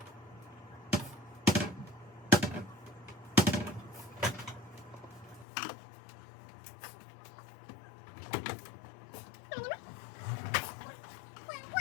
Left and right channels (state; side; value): drops out; right; at 5.5 s